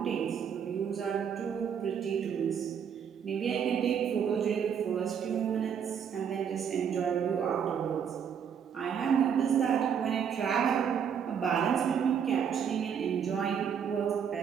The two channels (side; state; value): left; quieter; 7.7 dB